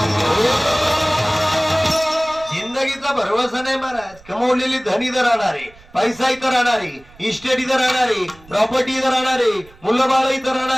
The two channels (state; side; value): noise; right; rumble, 24 dB below the sound